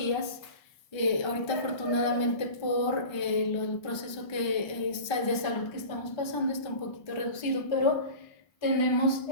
Ahorita afortunadamente por el proceso de salud que estamos pasando está un poquito reducido, pero tenemos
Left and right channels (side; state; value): right; late; 1.3 ms